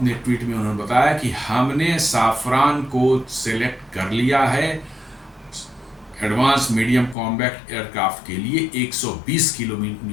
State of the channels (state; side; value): drops out; right; at 7.2 s